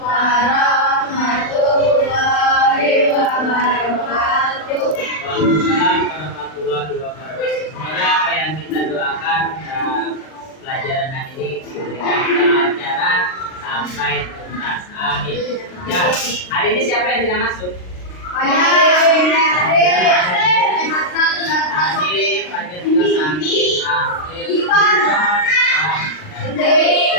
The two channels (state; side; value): late; right; 39 ms